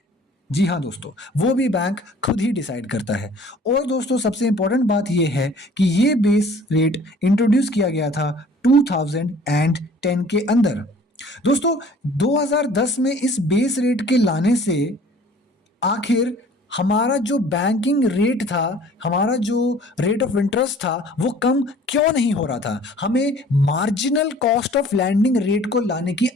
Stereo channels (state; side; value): normal; both; correlation 0.51